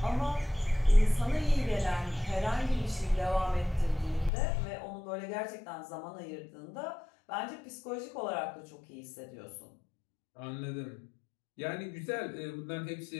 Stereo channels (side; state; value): right; drops out; at 4.3 s